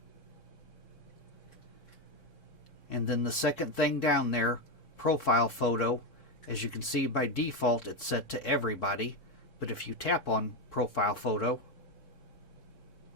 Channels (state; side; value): late; right; 3.7 ms